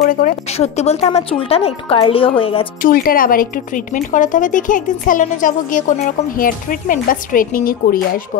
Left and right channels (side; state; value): right; quieter; 9.0 dB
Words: করে। সত্যি বলতে আমার চুলটা না একটু কার্লিও হয়ে গেছে, চুলটার আবার একটু ট্রিটমেন্ট করাতে হবে। দেখি একদিন স্যালনে যাবো, গিয়ে কোনো রকম হেয়ার ট্রিটমেন্ট বা স্ট্রেটনিং এ করিয়ে আসবো